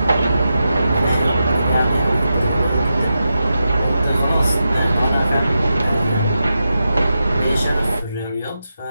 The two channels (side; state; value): both; inverted; correlation -0.89